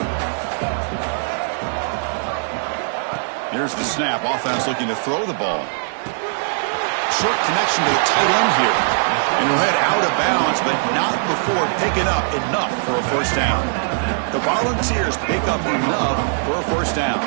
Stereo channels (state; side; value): silent; left; 66 dB below the other